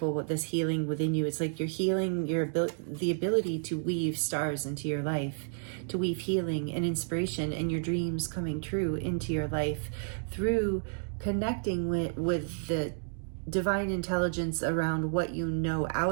with this healing within you. It's like you're healing the ability to weave stars into your life, to weave healing and inspiration and your dreams coming true into your life through connecting with the divine intelligence around what you know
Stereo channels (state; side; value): silent; left; digital silence